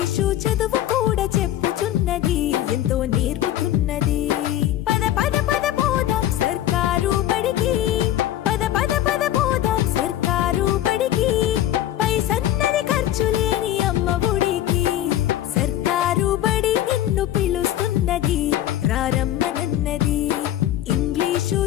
చదువు కూడా చెప్పుచున్నది ఎంతో నేర్పుతున్నది. పద పద పద పోదాం సర్కారు బడికి, పద పద పద పోదాం సర్కారు బడికి. పైసన్నది ఖర్చు లేని అమ్మ ఒడికి. సర్కారు బడి నిన్ను పిలుస్తున్నది రారమ్మనన్నది. ఇంగ్లీషు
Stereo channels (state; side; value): quieter; right; 12.8 dB